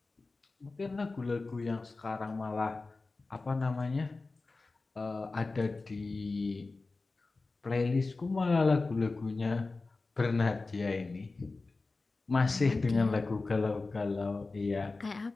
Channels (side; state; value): right; quieter; 3.6 dB